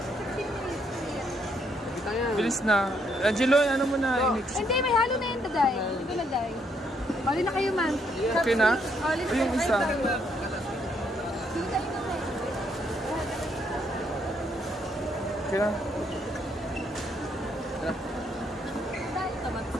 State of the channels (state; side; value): normal; both; correlation 0.73